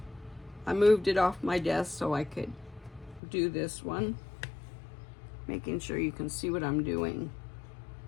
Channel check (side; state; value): right; drops out; at 3.2 s